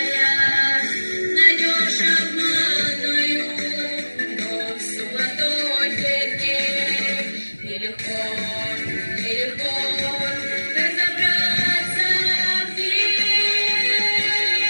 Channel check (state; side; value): inverted; both; correlation -1.00